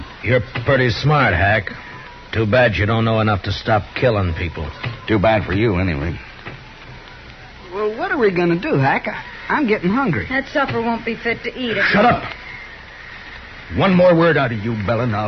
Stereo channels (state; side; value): identical; both; correlation 1.00